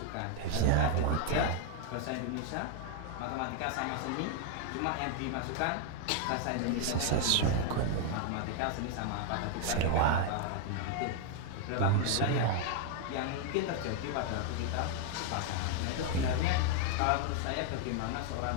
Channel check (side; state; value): both; different; correlation 0.00